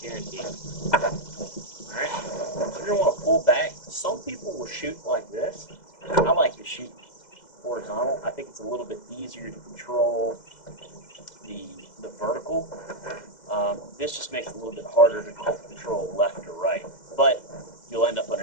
Guaranteed. Alright, so you're going to want to pull back. Some people will shoot like this. I like to shoot horizontal. I think it's a little bit easier to control the vertical. This just makes it a little bit harder to control left or right. But you'll end up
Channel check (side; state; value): right; late; 2.0 ms